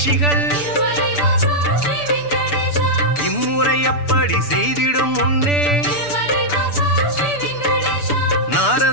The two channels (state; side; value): late; right; 6.9 ms